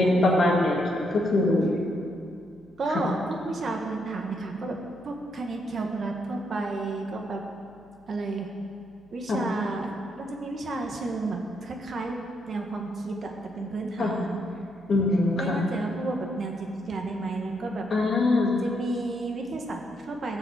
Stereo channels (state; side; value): noise; left; hum, 29 dB below the sound